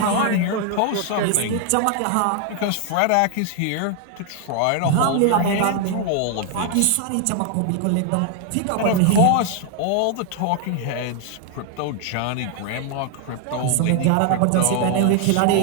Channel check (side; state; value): both; different; correlation 0.00